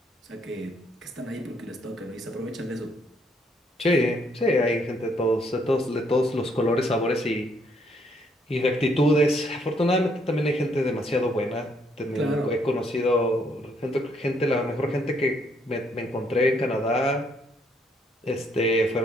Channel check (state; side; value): normal; both; correlation 0.70